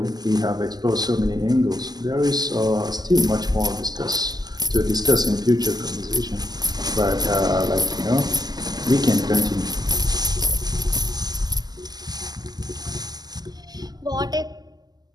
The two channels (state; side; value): late; left; 0.20 ms